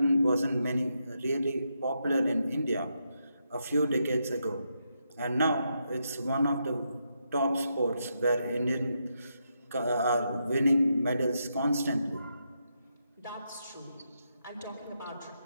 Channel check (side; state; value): both; inverted; correlation -0.82